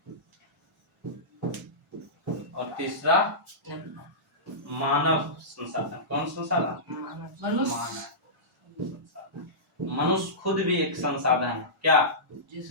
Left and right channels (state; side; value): normal; both; correlation -0.18